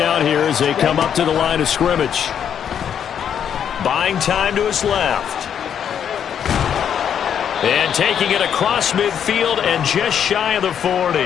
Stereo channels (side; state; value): right; quieter; 8.6 dB